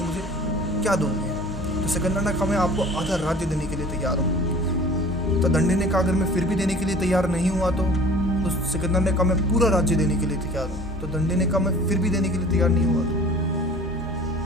मुझे क्या दोगे। तो सिकंदर ने कहा मैं आपको आधा राज्य देने के लिए तैयार हूँ। तो दंडे ने कहा अगर मैं फिर भी देने के लिए तैयार नहीं हुआ तो सिकंदर ने कहा मैं पूरा राज्य देने के लिए तैयार हूँ। तो दंडे ने कहा मैं फिर भी देने के लिए तैयार नहीं हुआ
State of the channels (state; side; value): normal; both; correlation 0.45